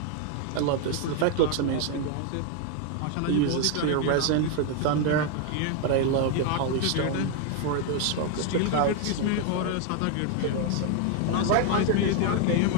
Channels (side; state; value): both; different; correlation 0.01